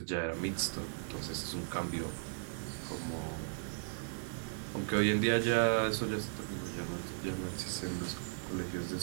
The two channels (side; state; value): left; silent; digital silence